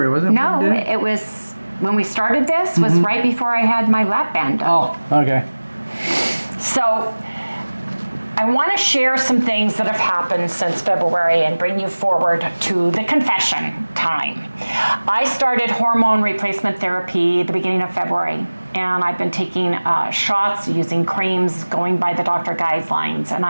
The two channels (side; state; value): both; inverted; correlation -1.00